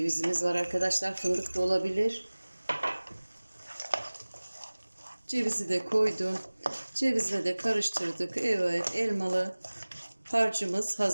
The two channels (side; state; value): both; inverted; correlation -1.00